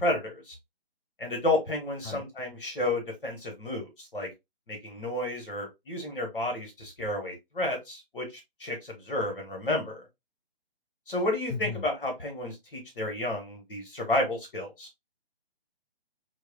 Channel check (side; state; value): both; normal; correlation 0.26